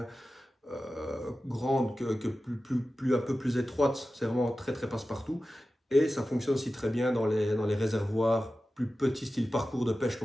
grandes que un peu plus étroites, c'est vraiment très très passe-partout. Et ça fonctionne aussi très bien dans les réservoirs plus petits, style parcours de pêche,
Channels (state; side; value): normal; both; correlation 0.94